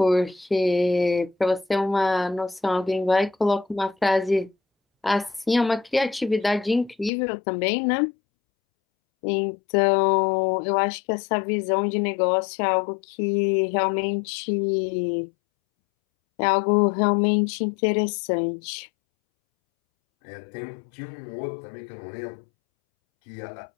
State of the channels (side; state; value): right; drops out; at 7.1 s